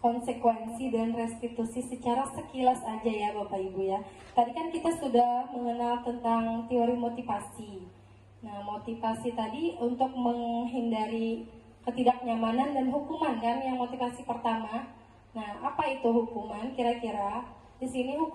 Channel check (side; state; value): both; identical; correlation 1.00